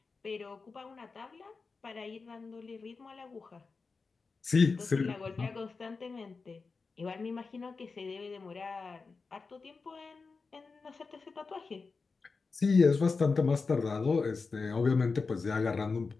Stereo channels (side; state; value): right; quieter; 4.4 dB